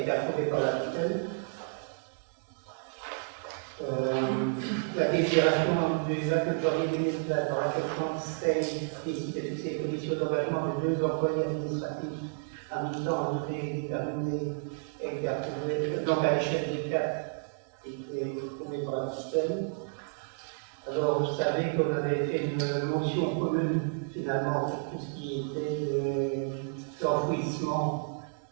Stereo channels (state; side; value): silent; left; digital silence